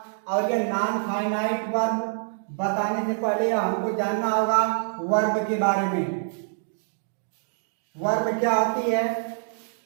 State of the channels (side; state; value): left; silent; digital silence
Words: और ये नॉन फाइनाइट वर्ब बताने से पहले हमको जानना होगा वर्ब के बारे में। वर्ब क्या होती है?